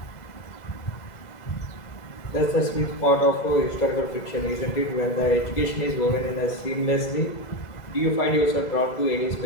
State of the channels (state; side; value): late; right; 2.0 ms